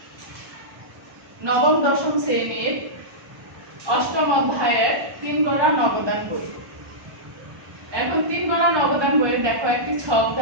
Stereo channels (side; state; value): left; late; 1.2 ms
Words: নবম দশম শ্রেণীর অষ্টম অধ্যায়ের ৩ গড়া নবদান বই। এখন ৩ গড়া নবদান বইয়ে দেখো একটি ছক